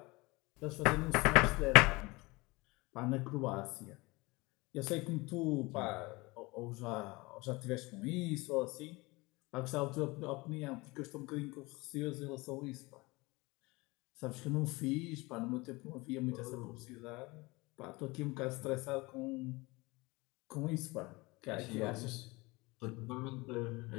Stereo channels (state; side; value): quieter; right; 23.6 dB